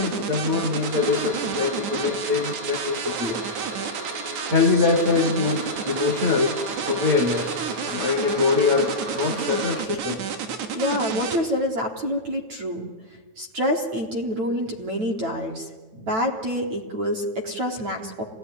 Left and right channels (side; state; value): left; late; 9.2 ms